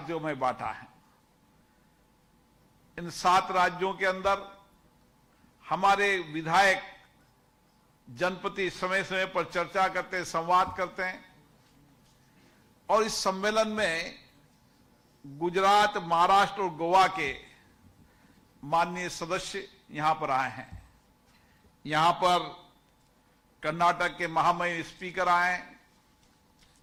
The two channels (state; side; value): identical; both; correlation 1.00